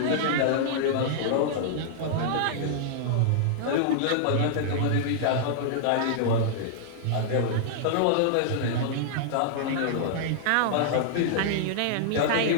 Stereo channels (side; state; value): both; different; correlation -0.01